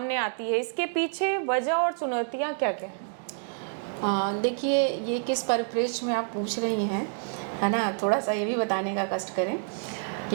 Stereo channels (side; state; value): left; silent; digital silence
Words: आती है, इसके पीछे वजह और चुनौतियां क्या क्या हैं? देखिए, ये किस परिप्रेक्ष्य में आप पूछ रही हैं, है ना, थोड़ा सा ये भी बताने का कष्ट करें